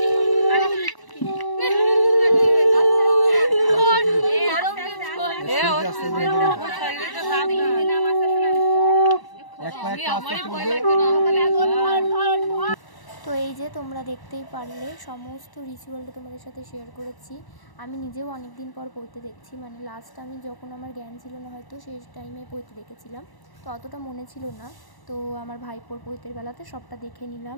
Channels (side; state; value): right; late; 1.0 ms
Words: তো এই যে তোমরা দেখতেই পারলে সমস্ত রিচুয়ালটা তোমাদের সাথে শেয়ার করেছি। আমি নিজেও অনেক দিন পর পড়তে দেখছি, মানে লাস্ট আমি যখন আমার জ্ঞান ছিল না হয়তো সেই টাইমে পড়তে দেখেছিলাম, তো অতটা মনে ছিল না। তো আমার ভাইপোর পৈতের বেলাতে সবটা দেখে নিলাম